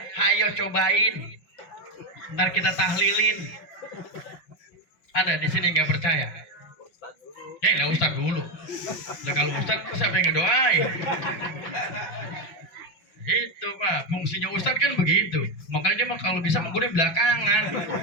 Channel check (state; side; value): late; right; 5.7 ms